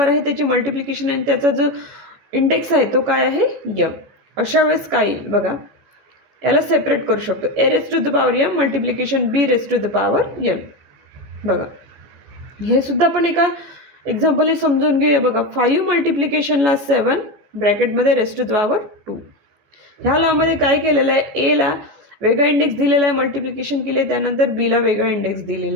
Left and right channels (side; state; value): left; late; 14 ms